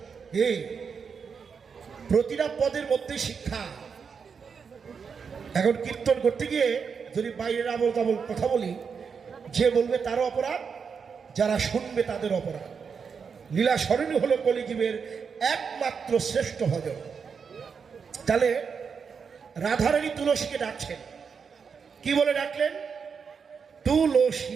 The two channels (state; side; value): quieter; left; 6.1 dB